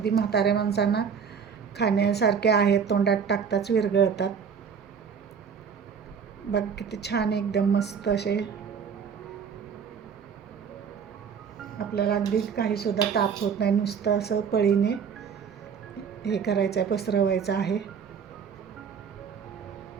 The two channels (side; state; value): left; quieter; 6.6 dB